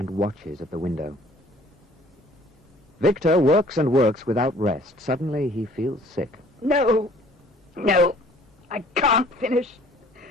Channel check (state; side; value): normal; both; correlation 0.55